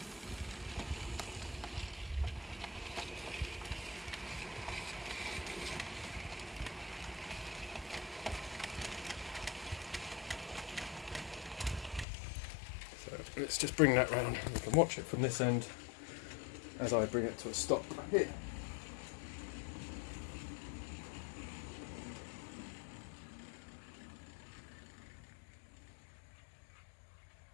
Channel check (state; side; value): drops out; right; at 12.1 s